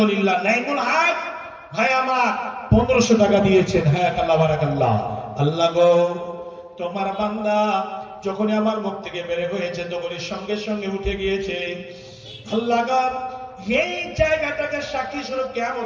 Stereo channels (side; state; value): both; identical; correlation 1.00